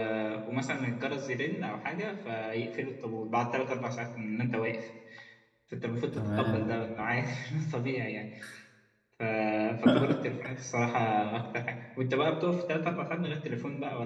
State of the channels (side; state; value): both; identical; correlation 1.00